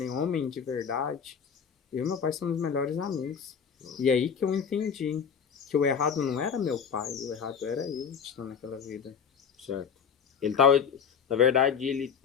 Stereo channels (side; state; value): right; quieter; 7.0 dB